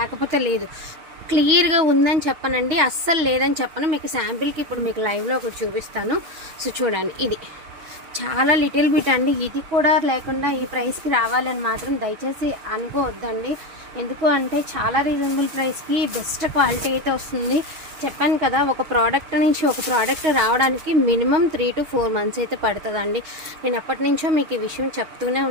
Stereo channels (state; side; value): late; left; 6.7 ms